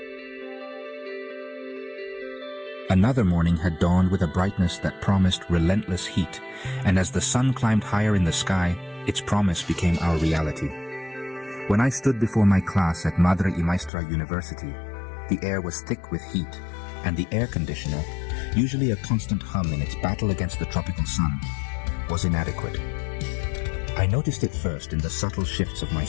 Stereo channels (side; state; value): right; drops out; at 13.9 s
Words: Another morning had dawned with a brightness that promised relentless heat, and as the sun climbed higher in the sky, its promise became our reality. When I stood before my class at Madre y Maestra University, the air was thick with heat, and the air conditioner, usually a constant hum in its battle against the tropical sun, was inadequate. I noticed it first in the subtle shifts of my